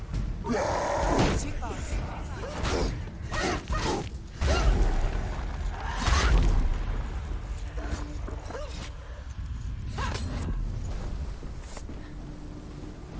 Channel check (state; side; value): identical; both; correlation 1.00